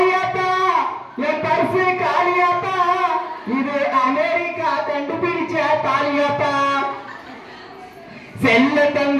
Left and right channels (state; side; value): identical; both; correlation 1.00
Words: என் பரிசு காளியாத்தா இது அமெரிக்கா கண்டுபிடிச்ச தாலியாத்தா, செல்ல